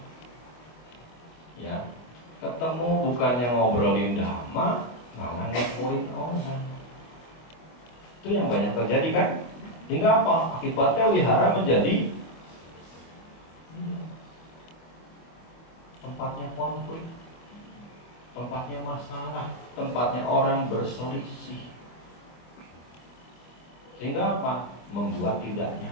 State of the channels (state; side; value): late; right; 25 ms